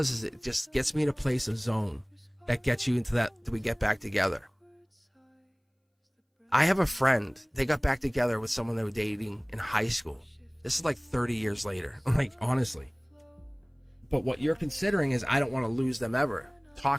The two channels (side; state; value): both; identical; correlation 1.00